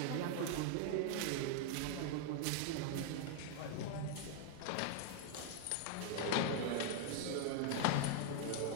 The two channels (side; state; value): both; different; correlation 0.00